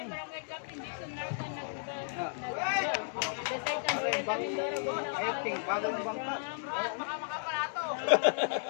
Ayating, bagong bangka.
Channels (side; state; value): right; silent; 55 dB below the other